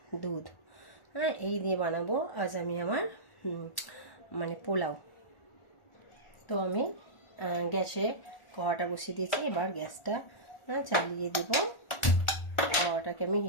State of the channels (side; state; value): right; late; 1.4 ms